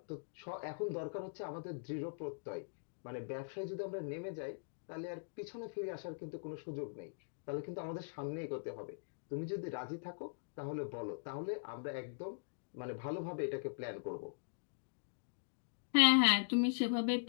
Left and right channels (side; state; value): right; silent; digital silence